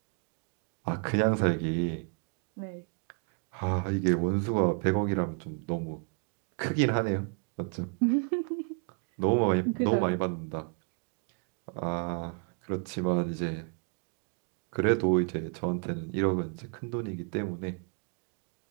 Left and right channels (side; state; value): left; quieter; 39.0 dB